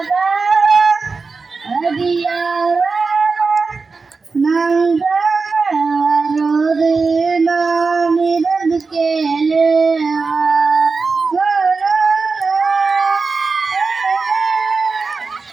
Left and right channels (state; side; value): quieter; left; 4.4 dB